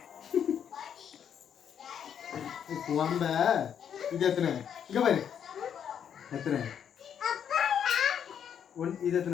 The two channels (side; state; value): right; quieter; 8.5 dB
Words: கும்பங்க இது எத்தனை இங்க பாரு எத்தனை இது